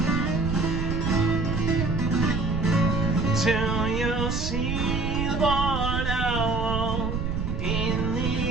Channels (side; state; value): right; noise; rumble, 2 dB below the sound